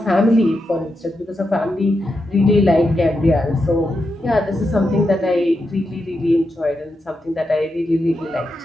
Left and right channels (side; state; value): both; normal; correlation 0.86